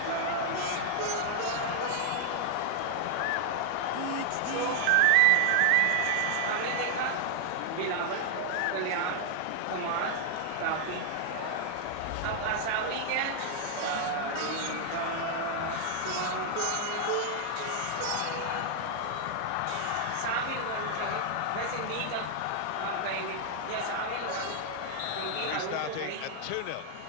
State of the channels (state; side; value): different; both; correlation 0.00